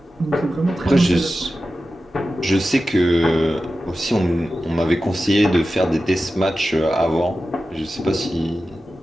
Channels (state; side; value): normal; both; correlation 0.93